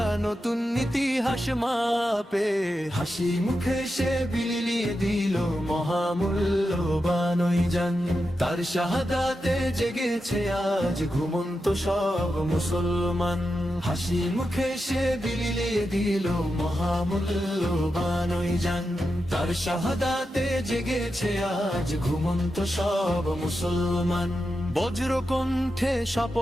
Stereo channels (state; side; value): normal; both; correlation 0.89